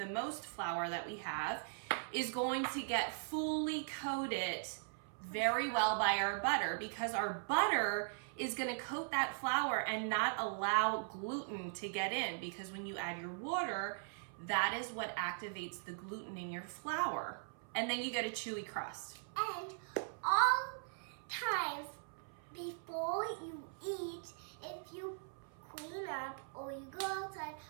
most flour that we have, is going to get fully coated very well by our butter, because our butter is gonna coat that flour and not allow gluten to get in, because when you add your water, that is what activates the gluten in your flour. And then you get a chewy crust. And all times before you eat, if you clean up or you go outside,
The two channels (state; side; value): silent; left; 51 dB below the other